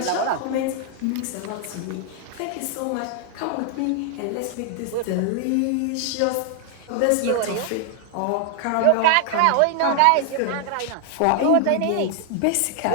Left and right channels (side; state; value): both; different; correlation 0.00